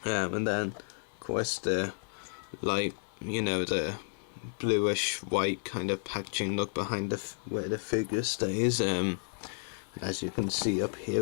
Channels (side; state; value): right; silent; 56 dB below the other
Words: And then of course the light, the bluish white kind of packaging look behind where the figure stays. As you can see up